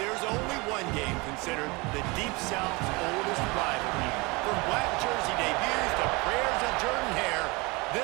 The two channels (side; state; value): left; quieter; 25.9 dB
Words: only one game considered the Deep South's oldest rivalry. From black jersey debuts to prayers of Jordan Hare,